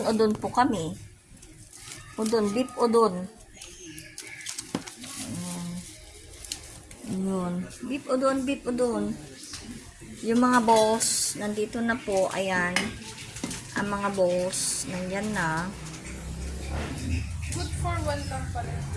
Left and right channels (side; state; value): both; identical; correlation 1.00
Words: po kami. Udon. Beef udon. Yun. Beef udon, beef udon. Yung mga boss, nandito na po. Ayan. Ang mga boss, nandyan na. Good for one lang pala.